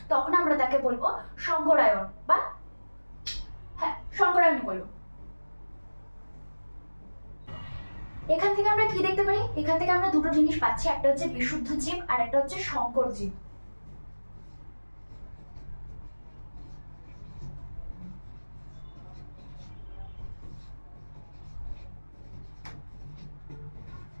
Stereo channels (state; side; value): inverted; both; correlation -1.00